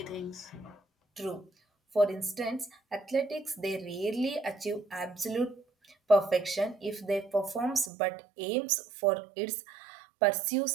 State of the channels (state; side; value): drops out; left; at 7.9 s